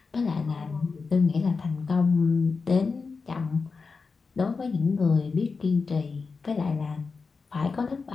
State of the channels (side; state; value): right; quieter; 4.6 dB